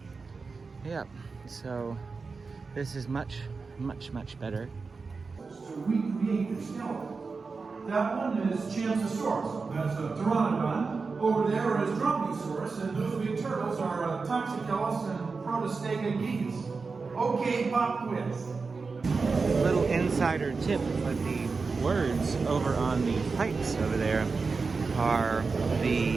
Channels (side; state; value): left; quieter; 4.5 dB